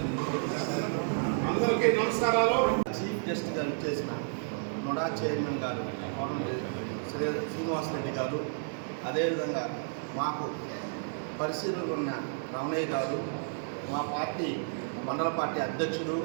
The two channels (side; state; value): left; silent; digital silence